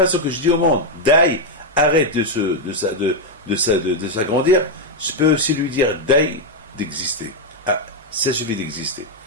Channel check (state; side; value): normal; both; correlation 0.01